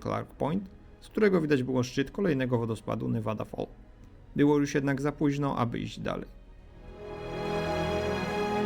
Point, z którego widać było szczyt kolejnego wodospadu Nevada Fall. Było już jednak za późno, aby iść dalej.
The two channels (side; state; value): both; identical; correlation 1.00